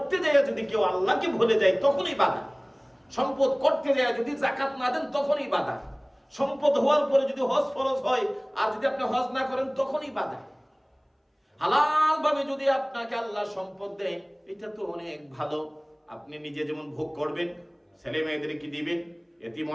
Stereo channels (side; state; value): both; identical; correlation 1.00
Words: যায় যদি কেউ আল্লাহকে ভুলে যায় তখনই বাধা। সম্পদ করতে যায় যদি যাকাত না দেন তখনই বাধা। সম্পদ হওয়ার পরে যদি হজ ফরজ হয় আর যদি আপনি হজ না করেন তখনই বাধা। হালাল ভাবে যদি আপনাকে আল্লাহ সম্পদ দেয়, এটা তো অনেক ভালো, আপনি নিজে যেমন ভোগ করবেন, ছেলে মেয়েদেরকে দিবেন, এতিম